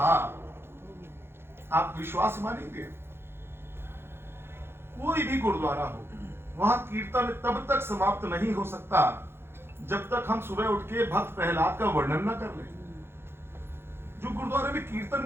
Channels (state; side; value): late; left; 0.11 ms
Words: आप विश्वास मानेंगे, कोई भी गुरुद्वारा हो वहां कीर्तन तब तक समाप्त नहीं हो सकता जब तक हम सुबह उठ के भक्त प्रहलाद का वर्णन न कर लें। जो गुरुद्वारे में